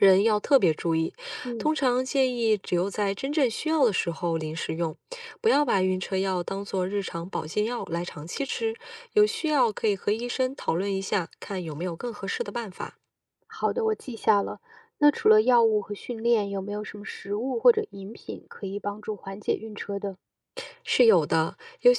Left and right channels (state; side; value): identical; both; correlation 1.00